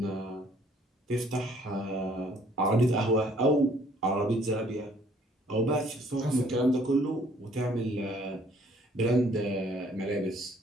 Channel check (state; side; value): normal; both; correlation 0.61